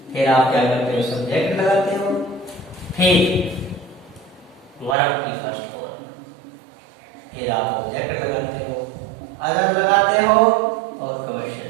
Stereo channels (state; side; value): drops out; left; at 5.0 s